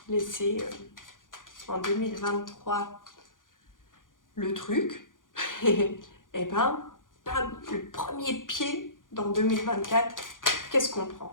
laissé en 2023 le truc, et ben, le premier pied dans 2024, qu'est-ce qu'on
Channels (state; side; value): late; right; 0.89 ms